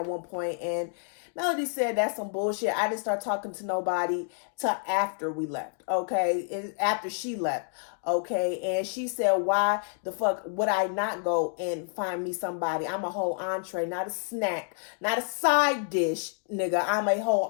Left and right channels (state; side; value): silent; right; 59 dB below the other